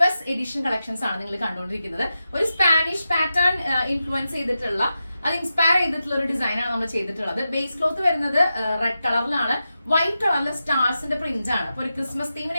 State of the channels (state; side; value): inverted; both; correlation -0.90